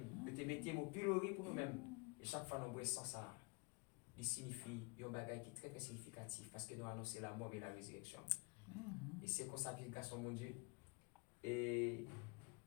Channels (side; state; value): right; quieter; 31.7 dB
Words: tu te mettez au pilori pour nous-mêmes. Et chaque fois que nous boissons ça, il signifie un bagage qui est très, très significatif parce que nous annonçons la mort et la résurrection. Et c'est comme ça l'application mon Dieu. Et